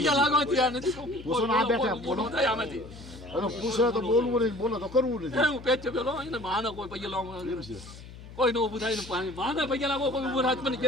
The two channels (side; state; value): left; noise; hum, 16 dB below the sound